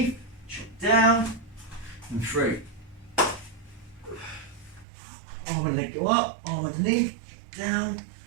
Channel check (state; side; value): drops out; left; at 4.9 s